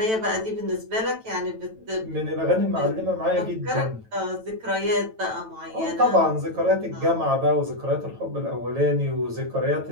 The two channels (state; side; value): late; left; 9.1 ms